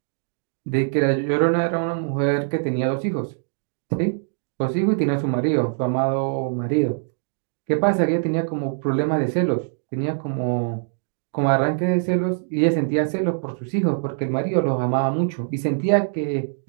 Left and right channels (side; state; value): left; silent; digital silence